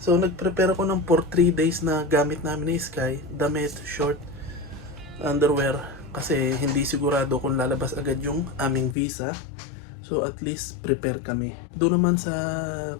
So nag-prepare ako ng for 3 days na gamit namin ni Sky, damit, short, underwear, kasi hindi sigurado kung lalabas agad yung aming visa. So at least prepare kami. Doon naman sa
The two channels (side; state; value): right; drops out; at 9.0 s